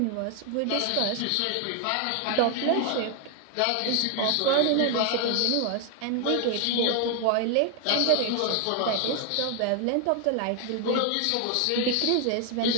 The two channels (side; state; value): both; different; correlation 0.01